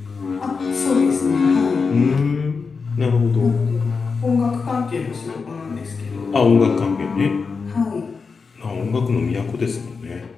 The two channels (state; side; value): quieter; right; 5.0 dB